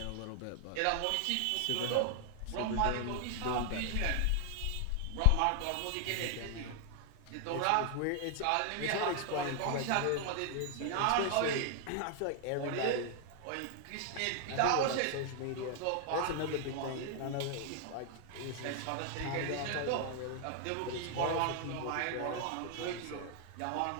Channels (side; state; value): both; different; correlation 0.00